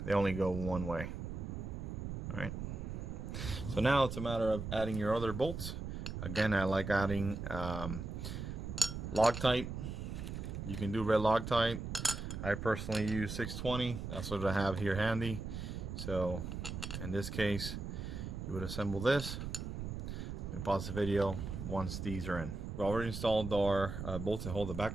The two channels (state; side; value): noise; right; rumble, 6 dB below the sound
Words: They only go one way. Alright. So now it's a matter of adding your other bolts. Again, I like adding Loctite You can do red Loctite. I personally use 620. That's what I have here handy. So in this case, you would assemble this. We pause the video once these are in. We already installed our bolts that hold the